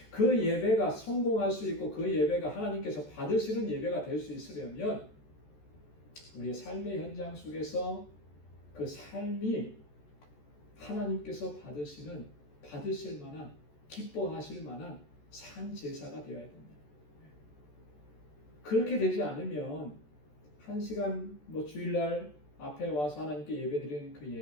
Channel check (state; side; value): late; right; 14 ms